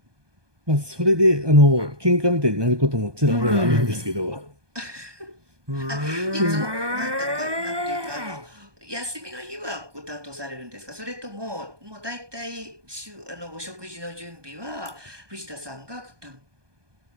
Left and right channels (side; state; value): left; late; 1.2 ms